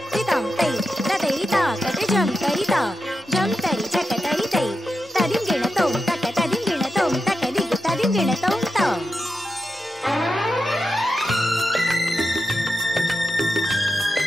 रि तोम तई तदई ता कते जम तई ता जम तई चक तई तई तदिम गिण तोम तक तदिम गिण तोम तक दिग तदिम गिण तोम तोम।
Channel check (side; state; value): both; normal; correlation 0.88